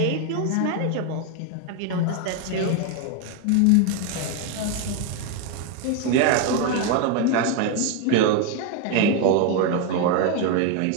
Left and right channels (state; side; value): different; both; correlation 0.01